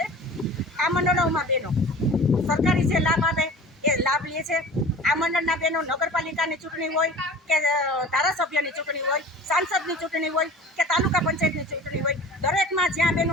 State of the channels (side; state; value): both; normal; correlation 0.41